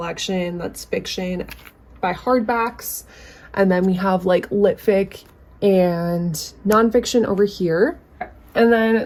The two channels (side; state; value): both; identical; correlation 1.00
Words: that's fiction by hardbacks. And then we have like lit fic and nonfiction over here. And then